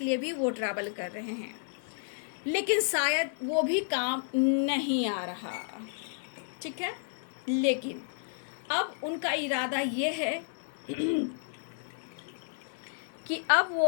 लिए भी वो ट्रैवल कर रहे हैं, लेकिन शायद वो भी काम नहीं आ रहा। ठीक है, लेकिन अब उनका इरादा ये है कि अब वो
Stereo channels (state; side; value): silent; right; 57 dB below the other